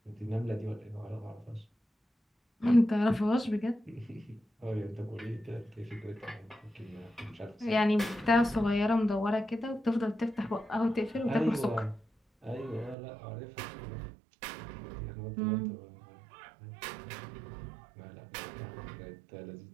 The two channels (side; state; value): left; drops out; at 13.0 s